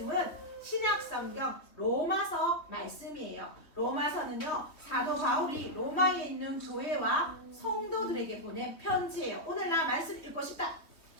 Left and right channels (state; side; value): late; right; 3.4 ms